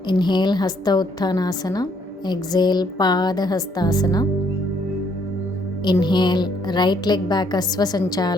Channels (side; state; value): both; normal; correlation 0.68